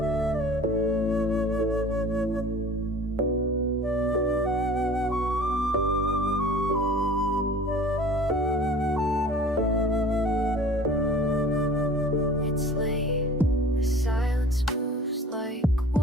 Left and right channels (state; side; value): normal; both; correlation 0.45